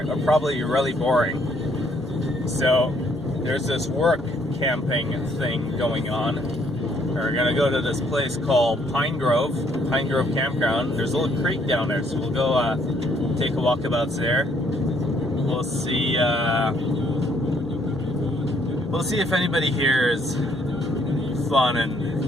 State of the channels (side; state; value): both; normal; correlation 0.67